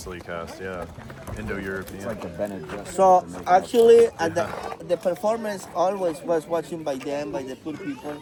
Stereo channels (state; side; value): identical; both; correlation 1.00